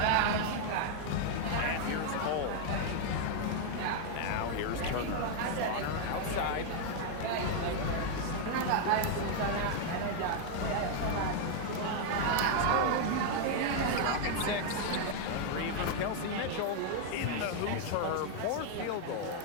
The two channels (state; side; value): different; both; correlation 0.00